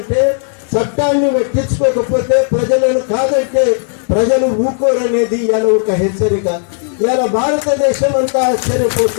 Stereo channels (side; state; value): right; silent; 58 dB below the other